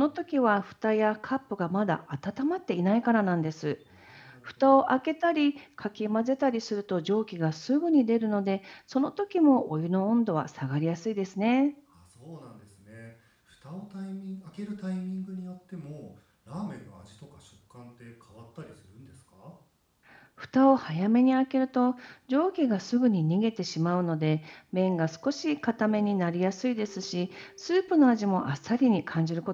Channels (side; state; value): both; identical; correlation 1.00